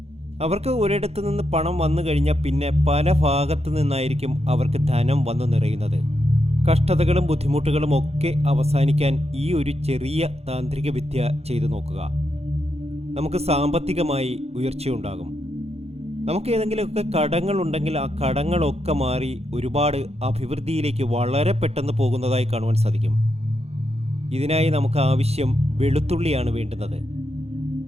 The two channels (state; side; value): late; left; 0.30 ms